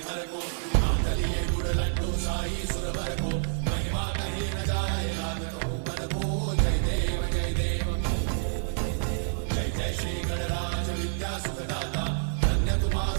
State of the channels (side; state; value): left; silent; digital silence